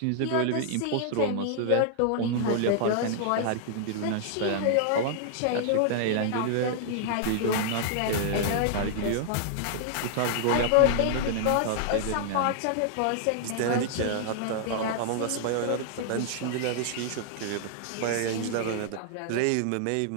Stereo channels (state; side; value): different; both; correlation -0.01